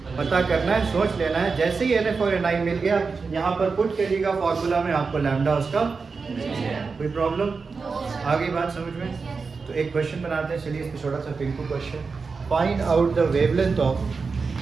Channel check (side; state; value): left; quieter; 4.7 dB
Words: पता करना है, सोच लेना है। जैसे ही NF और NI मिल गया यहाँ पर पुट करिएगा फॉर्मूला में, आपको लैम्डा उसका कोई प्रॉब्लम? आगे बात समझ में? तो एक क्वेश्चन बनाते हैं, चलिए इस पे छोटा सा Pinku question. Find out the wavelength of